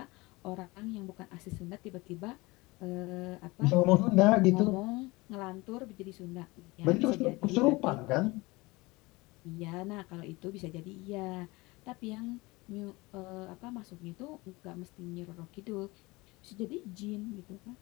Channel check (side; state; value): right; quieter; 23.0 dB